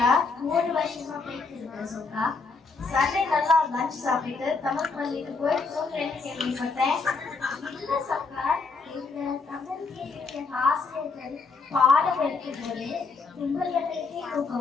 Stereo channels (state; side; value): quieter; right; 4.4 dB